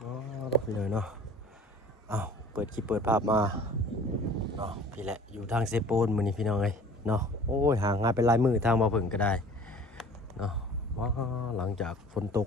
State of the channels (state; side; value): normal; both; correlation 0.47